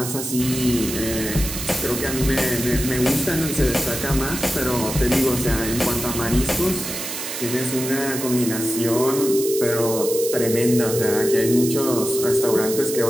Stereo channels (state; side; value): noise; right; hiss, 6 dB below the sound